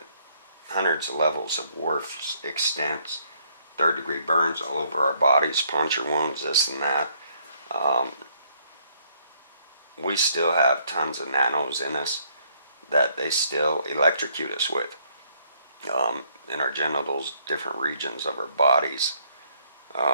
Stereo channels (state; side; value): inverted; both; correlation -0.68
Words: hundreds of levels of worse extents, third-degree burns all over our bodies, puncture wounds, this and that. We still have tons of nanos in us that they still electrocute us with. In our genitals, different regions of our bodies.